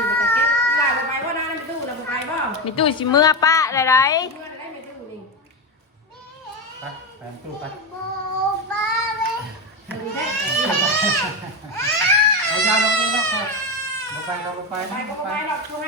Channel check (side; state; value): both; normal; correlation 0.14